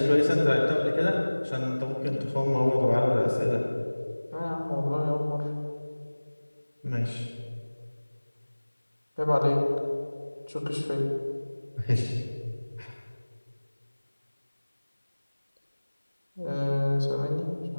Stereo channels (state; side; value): inverted; both; correlation -1.00